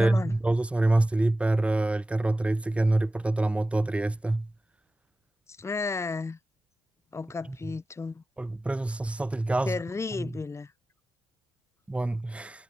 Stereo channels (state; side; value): normal; both; correlation 0.95